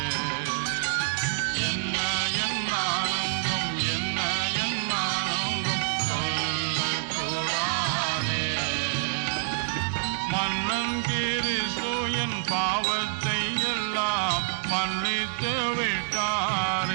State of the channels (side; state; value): left; silent; digital silence